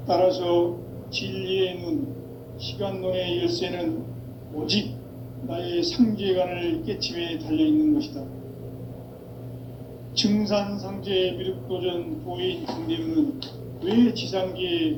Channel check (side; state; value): both; identical; correlation 1.00